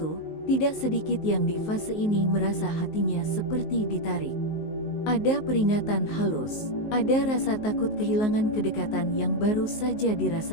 tidak sedikit yang di fase ini merasa hatinya seperti ditarik. Ada peringatan halus, ada rasa takut kehilangan kedekatan yang baru saja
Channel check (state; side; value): late; right; 19 ms